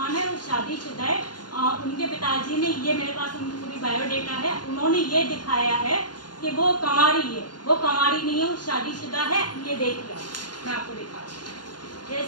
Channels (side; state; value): right; late; 0.70 ms